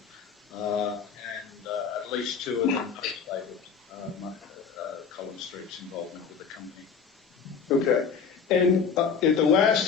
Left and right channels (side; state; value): right; quieter; 6.2 dB